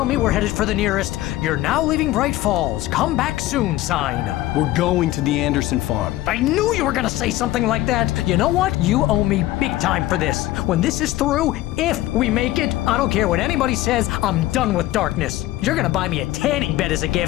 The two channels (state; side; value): quieter; right; 15.9 dB